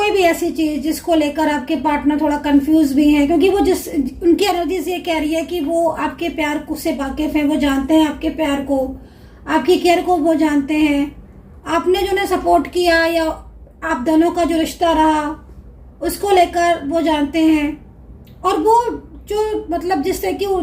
भी ऐसी चीज जिसको लेकर आपके पार्टनर थोड़ा कंफ्यूज भी हैं, क्योंकि वो जिस उनकी एनर्जीज ये कह रही है कि वो आपके प्यार को से वाकिफ हैं, वो जानते हैं आपके प्यार को, आपकी केयर को वो जानते हैं, आपने जो उन्हें सपोर्ट किया या आप दोनों का जो रिश्ता रहा उसको लेकर वो जानते हैं। और वो जो मतलब जिससे कि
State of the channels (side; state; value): both; identical; correlation 1.00